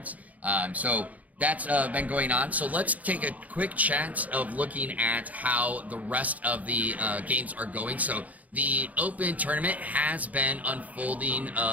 So that's been going on. So let's take a quick chance of looking at how the rest of the games are going. So the Open tournament has been unfolding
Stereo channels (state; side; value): late; left; 0.074 ms